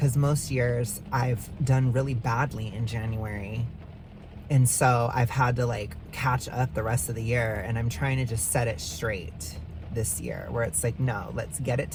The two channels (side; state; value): both; identical; correlation 1.00